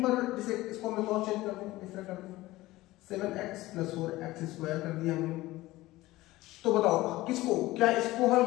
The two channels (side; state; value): right; quieter; 18.0 dB